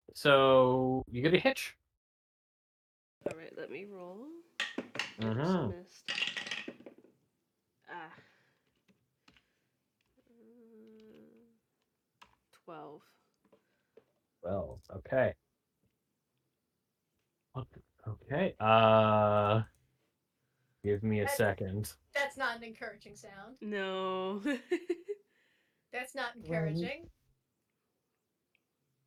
So you get a hitch. All right, let me roll. Oops, Mm-hmm. missed. Ah. 12. Well, okay. Okay. Give me a second. That's not an encouraging sound. No. That's not encouraging.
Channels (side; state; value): both; identical; correlation 1.00